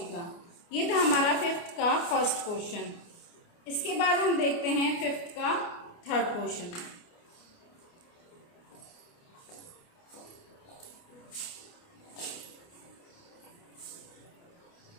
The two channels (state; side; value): late; right; 29 ms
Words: ये था हमारा 5th का फर्स्ट क्वेश्चन। इसके बाद हम देखते हैं 5th का थर्ड क्वेश्चन।